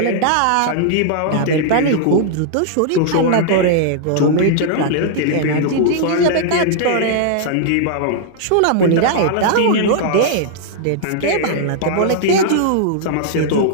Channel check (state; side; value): different; both; correlation -0.01